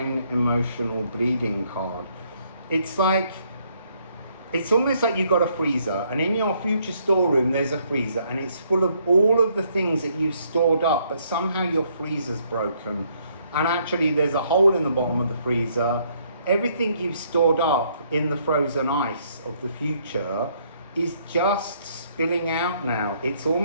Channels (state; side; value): inverted; both; correlation -0.69